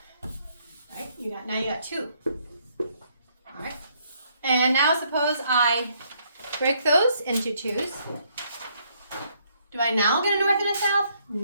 Right? Now you got two. All right. And now suppose I break those into twos. Do I now get a north and a south?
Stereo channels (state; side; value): inverted; both; correlation -0.70